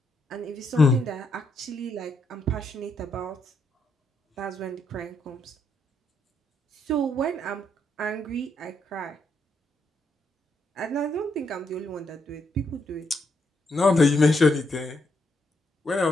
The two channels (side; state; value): both; normal; correlation 0.77